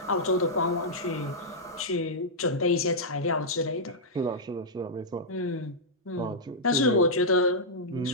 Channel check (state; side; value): normal; both; correlation -0.09